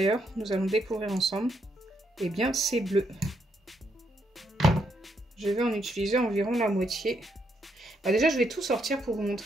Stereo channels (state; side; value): normal; both; correlation 0.76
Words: nous allons découvrir ensemble. Eh bien c'est bleu. Je vais en utiliser environ la moitié. Déjà je vais tout sortir pour vous